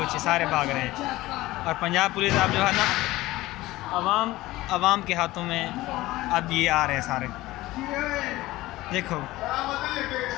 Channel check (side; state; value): right; quieter; 17.9 dB